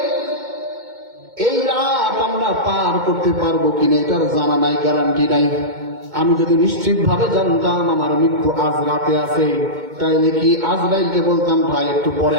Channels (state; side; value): late; left; 2.2 ms